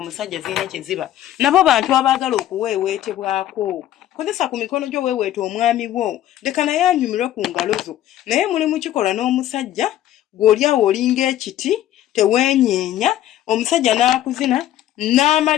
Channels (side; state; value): right; quieter; 12.7 dB